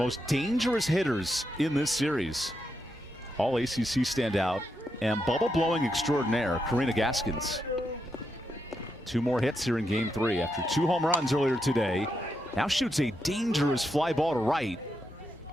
dangerous hitters in this series. All ACC standout and bubble-blowing extraordinaire, Karina Gaskins. 2 more hits here in Game 3 after 2 home runs earlier today. Now shoots a dangerous fly ball to right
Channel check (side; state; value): both; normal; correlation 0.83